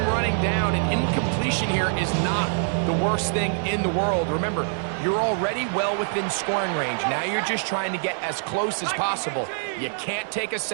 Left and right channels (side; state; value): left; silent; 62 dB below the other